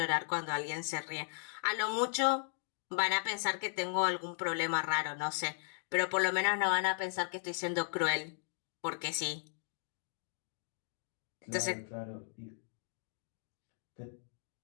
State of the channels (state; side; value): silent; right; 53 dB below the other